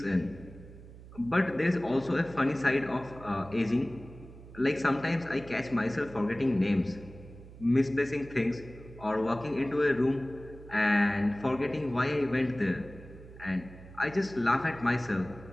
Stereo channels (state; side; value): noise; right; hum, 17 dB below the sound